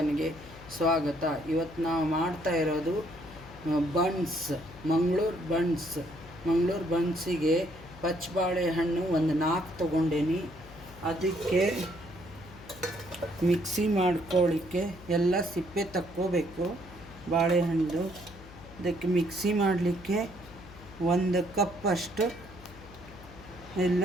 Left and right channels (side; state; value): left; noise; hum, 19 dB below the sound